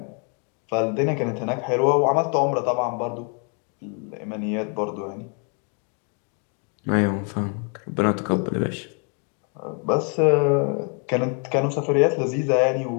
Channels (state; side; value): quieter; right; 38.6 dB